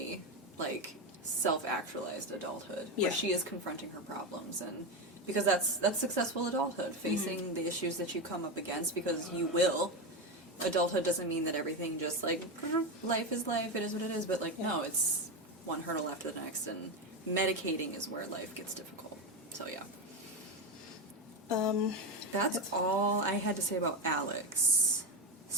like, self-actualized adulthood, where she is confronting her problems, and because that's successful adulthood, facing the issues that you come up against, because you will. Adulthood doesn't mean that everything just, like, life is life, it is what it is, but, like, no, it's one hurdle after the next, and medicating is where life gets difficult. So, yeah. That's all I had to say about Alex,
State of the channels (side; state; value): both; normal; correlation 0.13